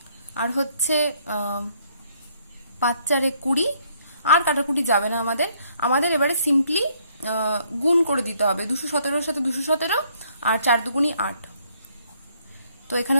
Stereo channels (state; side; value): inverted; both; correlation -0.67